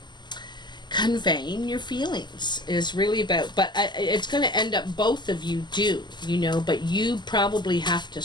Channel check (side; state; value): right; late; 0.21 ms